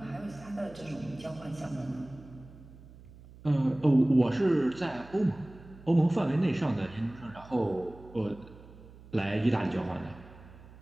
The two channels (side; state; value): right; noise; hum, 20 dB below the sound